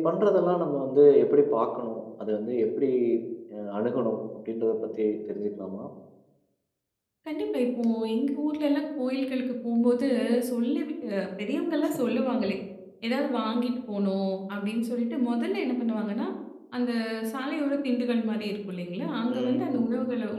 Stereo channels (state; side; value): identical; both; correlation 1.00